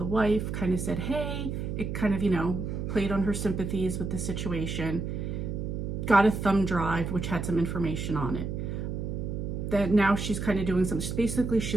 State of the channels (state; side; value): noise; right; hum, 4 dB below the sound